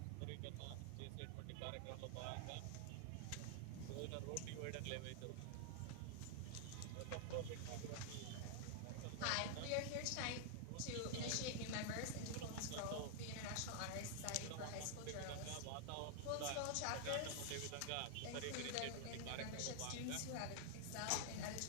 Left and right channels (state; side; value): different; both; correlation 0.00